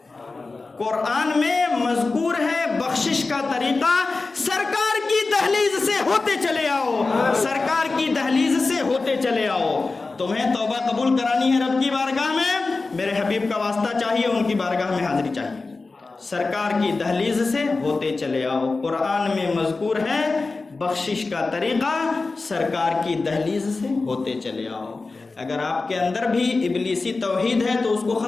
قرآن میں مذکور ہے بخشش کا طریقہ، سرکار کی دہلیز سے ہوتے چلے آؤ، سرکار کی دہلیز سے ہوتے چلے آؤ۔ تمہیں توبہ قبول کرانی ہے رب کی بارگاہ میں، میرے حبیب کا واسطہ چاہیے، ان کی بارگاہ میں حاضری چاہیے، سرکار کی دہلیز سے ہوتے چلے آؤ۔ قرآن میں مذکور ہے بخشش کا طریقہ، سرکار کی دہلیز سے ہوتے چلے آؤ۔ اگر آپ کے اندر بھی ابلیسی توحید ہے تو اس کو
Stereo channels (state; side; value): quieter; right; 3.7 dB